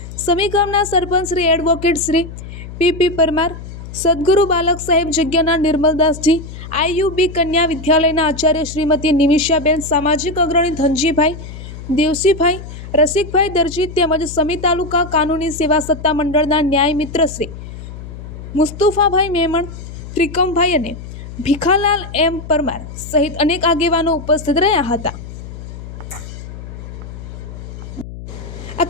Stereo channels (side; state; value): left; noise; hum, 12 dB below the sound